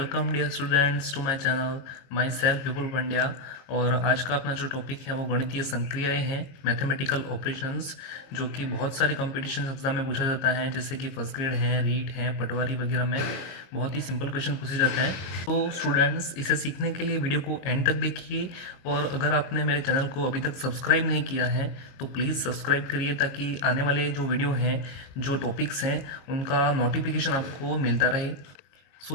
dear students to my channel. Myself Vipul Pandya. और आज का अपना जो टॉपिक है वो गणितीय संक्रियाएं हैं, मैथमेटिकल ऑपरेशंस, जो कि बहुत सारे कंपटीशन एग्जाम में पूछा जाता है, जैसे कि फर्स्ट ग्रेड है, रीट है, पटवारी वगैरह में बहुत ही सिंपल क्वेश्चन पूछे जाते हैं। तो स्टूडेंट्स, इसे सीखने के लिए वीडियो को एंड तक देखिए, और अगर आपने मेरे चैनल को अभी तक सब्सक्राइब नहीं किया है तो प्लीज़ सब्सक्राइब करिए, ताकि आने वाले जो वीडियो हैं, जो टॉपिक्स हैं, उनका नोटिफिकेशन आपको मिलता रहे।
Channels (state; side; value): late; right; 22 ms